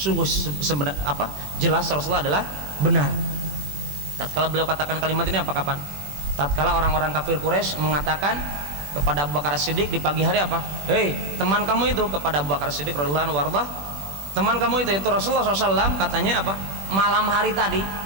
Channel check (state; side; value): late; left; 21 ms